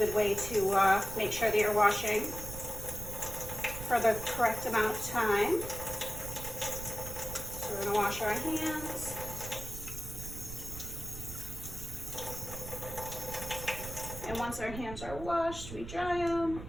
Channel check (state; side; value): noise; right; rumble, 10 dB below the sound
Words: way to make sure that you're washing for the correct amount of time. So we're going to wash our hands. And once our hands are washed, we dry them.